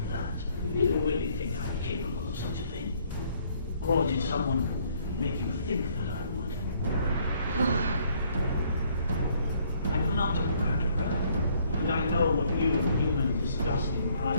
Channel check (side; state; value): both; inverted; correlation -0.65